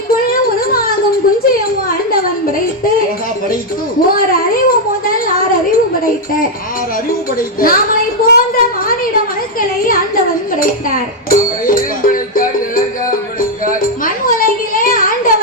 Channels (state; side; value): normal; both; correlation 0.00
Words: உருவாகும் குஞ்சையும் ஆண்டவன் படைத்து ஓர் அறிவு முதல் 6 அறிவு படைத்த நாமளை போன்ற மானிட மனுக்களை ஆண்டவன் படைத்தார். மண் உலகிலே